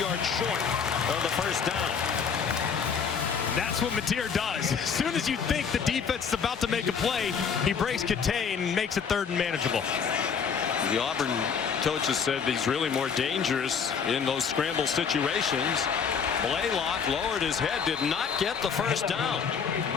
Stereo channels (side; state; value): right; quieter; 6.5 dB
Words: short of the first down. That's what Matier does. As soon as you think the defense is about to make a play, he breaks contain and makes it third and manageable. The Auburn coaches said he's really more dangerous in those scramble situations. Blaylock lowered his head, did not get the first down.